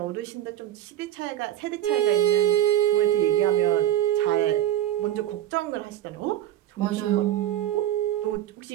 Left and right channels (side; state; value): left; quieter; 12.4 dB